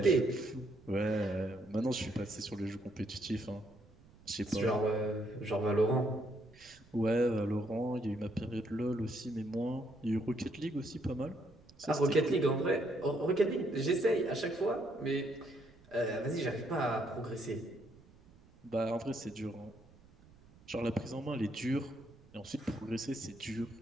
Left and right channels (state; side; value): noise; right; rumble, 26 dB below the sound